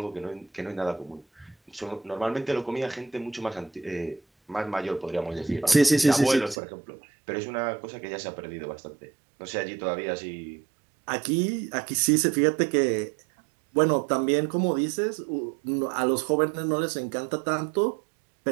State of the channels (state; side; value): drops out; left; at 6.6 s